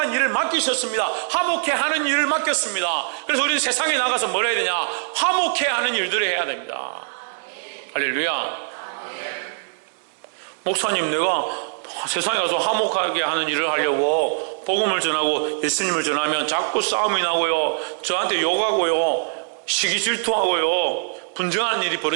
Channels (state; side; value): silent; left; 64 dB below the other